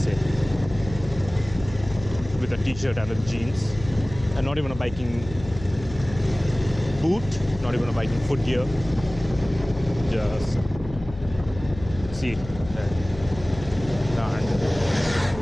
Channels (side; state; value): left; noise; hum, 13 dB below the sound